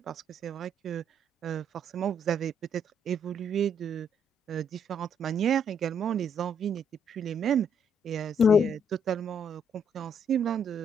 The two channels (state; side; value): normal; both; correlation 0.70